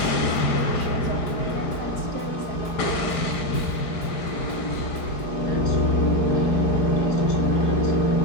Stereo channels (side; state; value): right; late; 4.6 ms